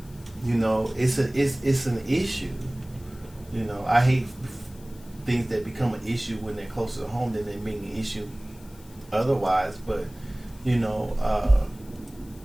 it's an issue. I hate things that become an issue when they're closer to home than they being an issue otherwise. But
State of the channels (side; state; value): left; noise; hiss, 25 dB below the sound